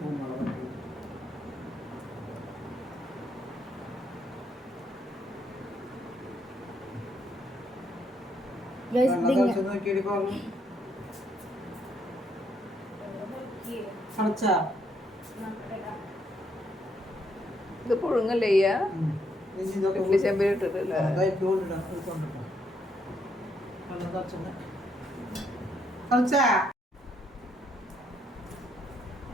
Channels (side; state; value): both; normal; correlation 0.74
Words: ഇത് പുഴുങ്ങല്ലേ ചെമ്പിൽ ഇട്ടിട്ടില്ല.